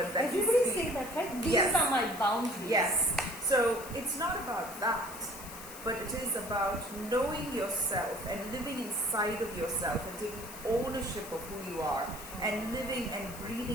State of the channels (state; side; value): noise; left; hiss, 14 dB below the sound